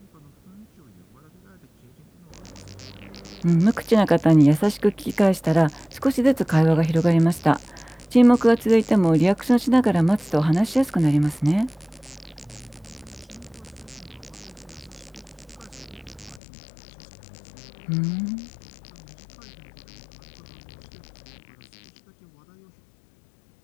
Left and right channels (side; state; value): right; drops out; at 16.4 s